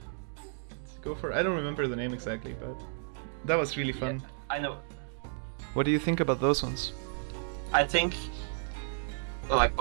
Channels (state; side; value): silent; left; digital silence